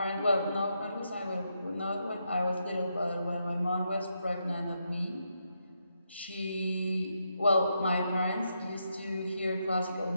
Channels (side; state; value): both; inverted; correlation -0.81